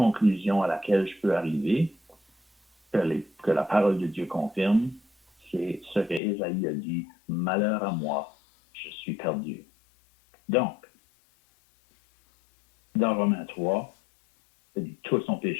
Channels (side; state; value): right; drops out; at 6.2 s